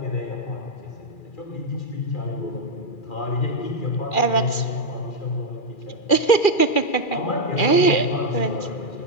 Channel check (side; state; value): right; late; 2.4 ms